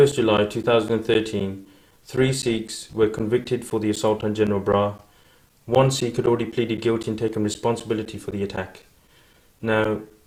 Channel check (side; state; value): both; identical; correlation 1.00